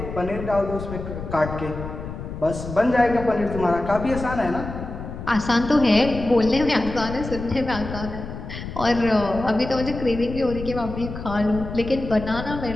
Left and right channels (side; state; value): left; noise; rumble, 9 dB below the sound